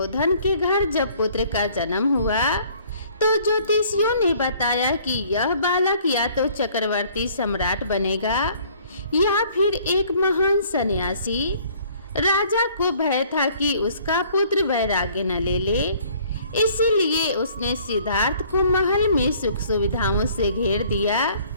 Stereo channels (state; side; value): inverted; both; correlation -0.57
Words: के घर जब पुत्र का जन्म हुआ, तो ज्योतिषियों ने बताया कि यह बालक या तो चक्रवर्ती सम्राट बनेगा या फिर एक महान सन्यासी। राजा को भय था कि उसका पुत्र वैराग्य न ले ले, इसीलिए उसने सिद्धार्थ को महल में सुख सुविधाओं से घेर दिया,